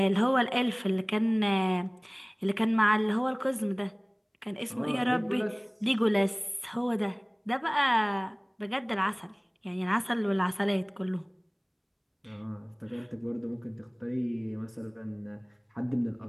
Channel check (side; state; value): both; identical; correlation 1.00